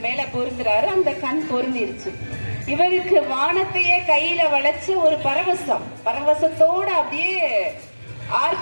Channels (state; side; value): inverted; both; correlation -1.00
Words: மேல பொருந்துறாரு. அந்த கண் பொருந்திருச்சு. இவருக்கு வானத்தையே கையில வளைச்சு ஒரு பரவசத்தோட அப்படியே